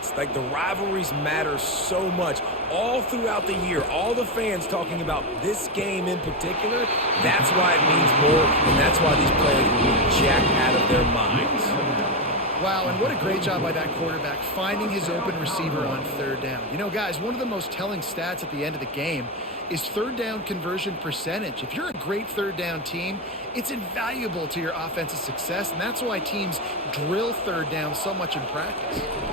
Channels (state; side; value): normal; both; correlation 0.10